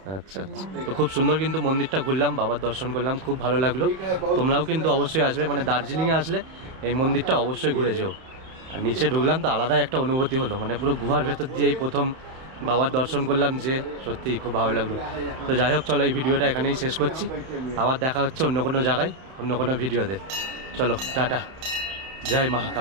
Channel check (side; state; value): left; late; 31 ms